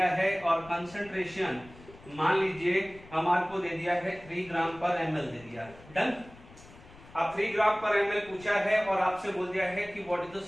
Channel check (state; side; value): noise; left; rumble, 21 dB below the sound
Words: है और कंसंट्रेशन मान लीजिए हमारे को दे दिया है 3 ग्राम पर एमएल दे दिया. डन. अब 3 ग्राम पर एमएल पूछा है और आपसे बोल दिया है कि what is the